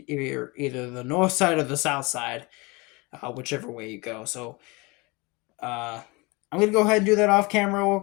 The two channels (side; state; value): right; quieter; 26.0 dB